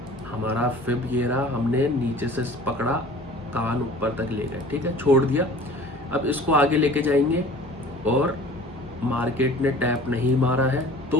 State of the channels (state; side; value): normal; both; correlation 0.45